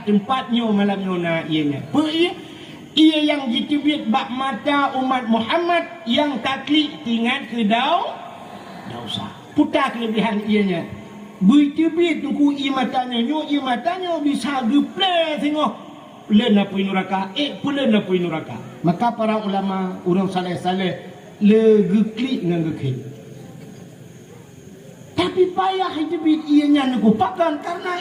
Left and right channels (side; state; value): both; identical; correlation 1.00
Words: tempat nyo malam nyo na ianya ia yang ditibit bak mata umat Muhammad yang taklik tinggal ke dosa putar kelebihan ianya bertibit nunggu imatanya nyo bisa geple tengok len apa neraka pulen apa neraka. Maka para ulama orang saleh-saleh le geklik dengan geklik. Tapi payah hidup ianya nak pakan